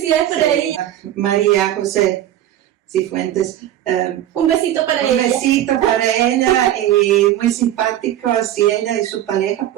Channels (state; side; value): quieter; left; 12.3 dB